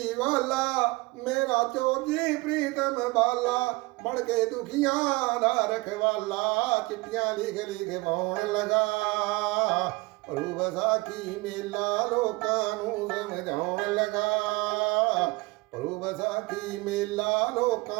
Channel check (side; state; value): left; quieter; 23.7 dB